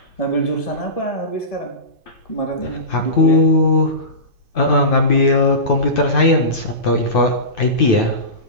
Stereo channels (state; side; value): late; left; 2.5 ms